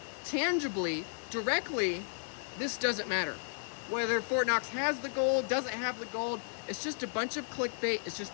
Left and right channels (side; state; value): right; silent; digital silence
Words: tangibly, directly, this doesn't matter. Whether Fort Knox has the gold, doesn't have the gold, it's just a bunch of clickbait. It's